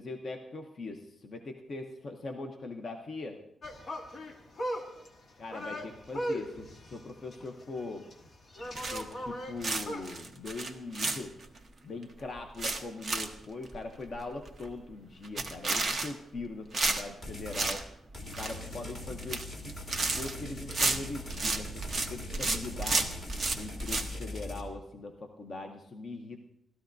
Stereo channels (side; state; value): both; normal; correlation 0.81